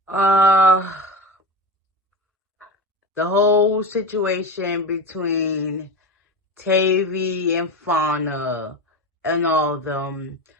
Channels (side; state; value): both; normal; correlation 0.24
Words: the whole situation between Tavy and Fauna and all of them.